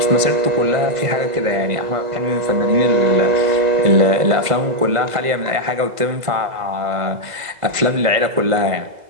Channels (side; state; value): left; late; 2.0 ms